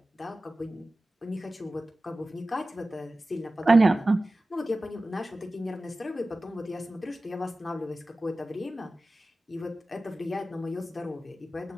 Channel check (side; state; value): both; normal; correlation 0.95